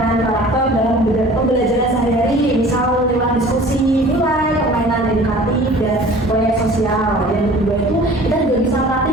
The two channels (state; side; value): normal; both; correlation 0.46